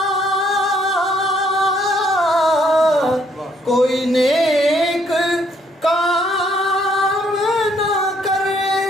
کوئی نیک کام نہ کر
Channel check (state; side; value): normal; both; correlation 0.68